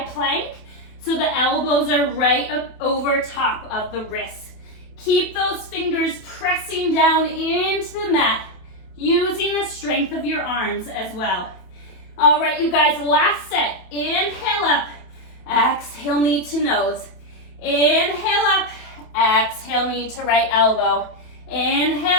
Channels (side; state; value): right; late; 27 ms